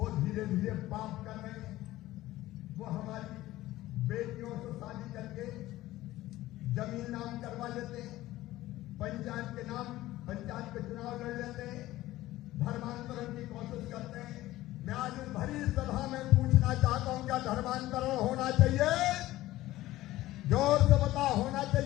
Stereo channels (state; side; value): quieter; right; 16.3 dB